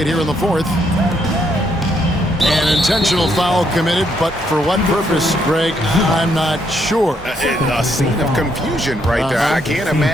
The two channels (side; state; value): both; normal; correlation 0.74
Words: here in the fourth. An intentional foul committed, but for what purpose, Greg, I'm not sure. A scene of confusion right there. I can't